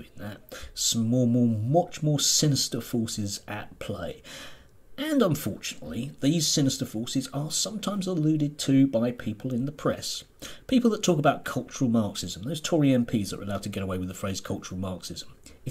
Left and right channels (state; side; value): identical; both; correlation 1.00